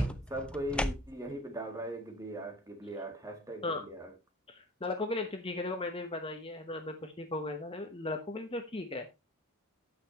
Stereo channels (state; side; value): normal; both; correlation 0.43